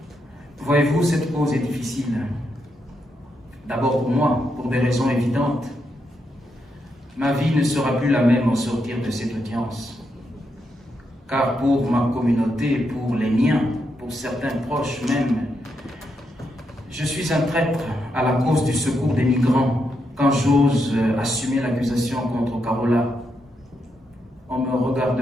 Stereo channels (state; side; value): normal; both; correlation 0.82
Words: Voyez-vous, cette cause est difficile. D'abord pour moi, pour des raisons évidentes. Ma vie ne sera plus la même au sortir de cette audience. Car pour ma communauté, pour les miens, pour certains proches même, je suis un traître à la cause du secours des migrants quand j'ose assumer l'accusation contre Carola. On me